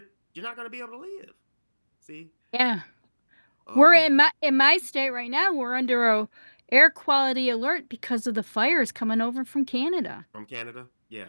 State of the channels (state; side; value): inverted; both; correlation -1.00